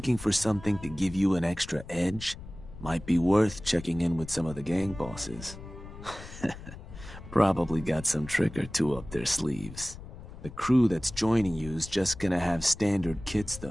for something to give you an extra edge, might be worth checking in with some of the gang bosses. Probably got some trick or two up their sleeves. The crew that's joining you is just gonna have standard kits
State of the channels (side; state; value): left; noise; rumble, 14 dB below the sound